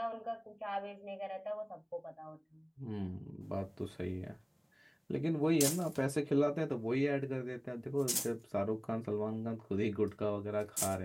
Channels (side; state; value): both; identical; correlation 1.00